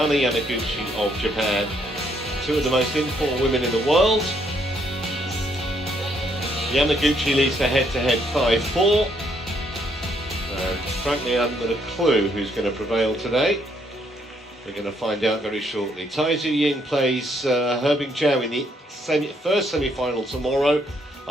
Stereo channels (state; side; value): normal; both; correlation 0.71